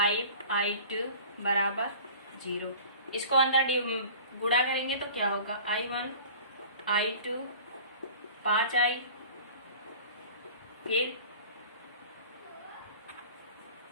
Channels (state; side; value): inverted; both; correlation -0.43